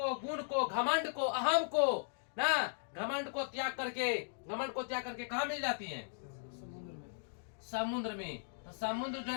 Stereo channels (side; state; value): right; silent; digital silence